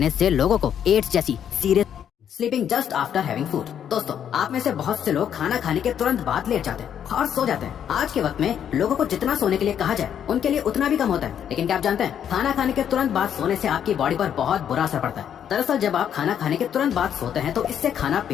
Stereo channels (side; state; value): right; quieter; 9.1 dB